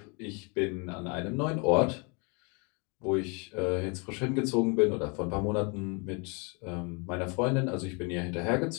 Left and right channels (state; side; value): quieter; right; 32.9 dB